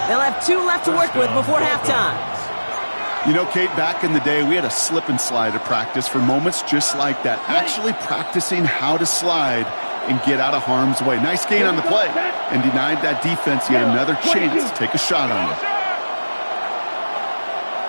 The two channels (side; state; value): both; inverted; correlation -1.00